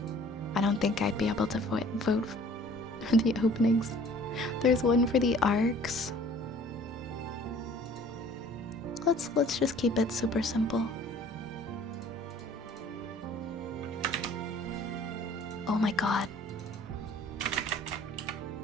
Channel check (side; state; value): both; normal; correlation 0.51